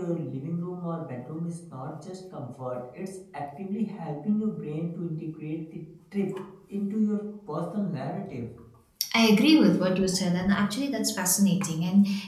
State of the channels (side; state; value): both; identical; correlation 1.00